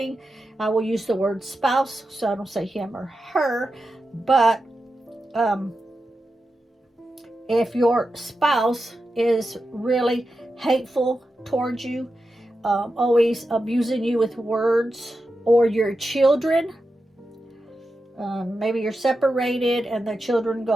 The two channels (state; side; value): normal; both; correlation 0.90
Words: I will use the word spouse, so I don't say him or her, but if your spouse is really hateful towards you, always abusing you with words, or your children, maybe you're separated and the children